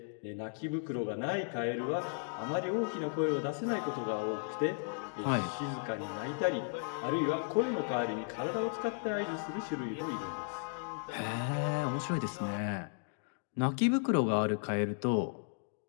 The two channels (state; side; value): silent; right; 54 dB below the other